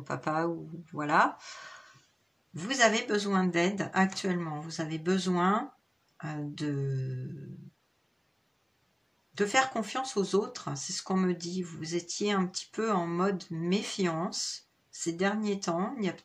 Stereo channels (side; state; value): both; identical; correlation 1.00